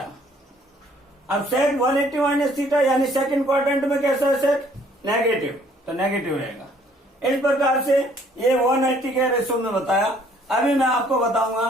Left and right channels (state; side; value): normal; both; correlation 0.61